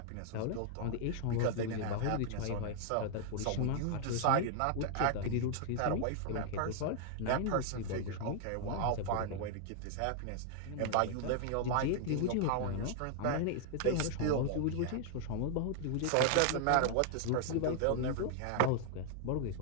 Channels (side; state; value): both; different; correlation -0.01